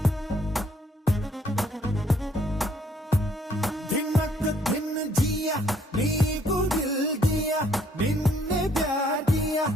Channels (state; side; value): normal; both; correlation 0.65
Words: नीको दिल दिया निन्ने प्यार दिया